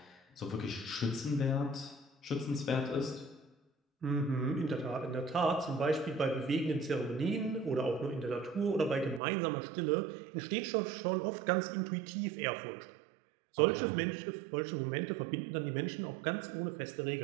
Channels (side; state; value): left; drops out; at 9.2 s